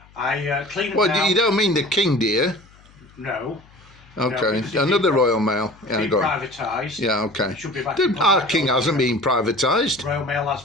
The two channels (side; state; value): left; noise; hum, 27 dB below the sound